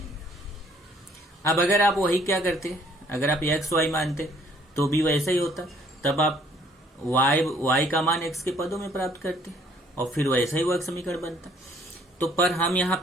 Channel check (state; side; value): normal; both; correlation 0.61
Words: अब अगर आप वही क्या करते, अगर आप x y मानते तो भी वैसा ही होता, तब आप y का मान x के पदों में प्राप्त करते और फिर वैसा ही वर्ग समीकरण बनता। तो पर हम यहाँ